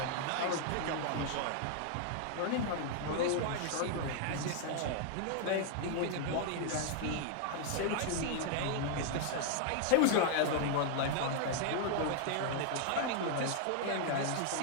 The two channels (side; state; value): both; different; correlation 0.00